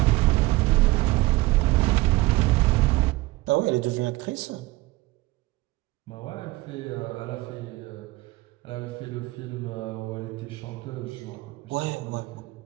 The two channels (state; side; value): quieter; left; 20.4 dB